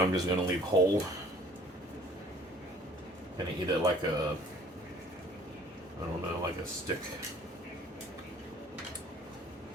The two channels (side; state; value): both; normal; correlation 0.54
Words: I'm just going to leave whole. And eat it like a, I don't know, like a stick.